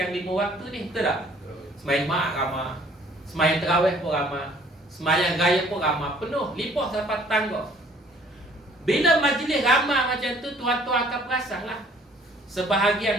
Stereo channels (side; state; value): both; normal; correlation 0.58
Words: 5 waktu ni, betul tak? Semayang Jumaat ramai, semayang Terawih pun ramai, semayang Raya pun ramai, penuh, limpah sampai tangga. Bila majlis ramai macam tu, tuan-tuan akan perasan lah.